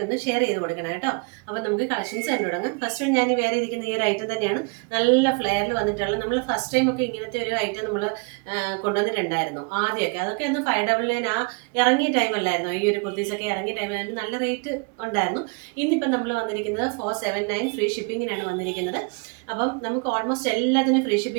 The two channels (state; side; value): quieter; left; 34.8 dB